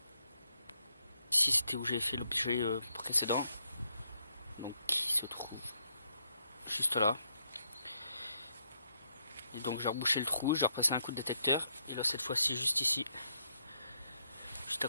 Ici c'était où j'ai fait l'objet précédent. Donc qui se trouve juste là. Et donc j'ai rebouché le trou, j'ai repassé un coup de détecteur. Et là cette fois-ci juste ici. Juste à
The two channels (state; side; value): inverted; both; correlation -0.78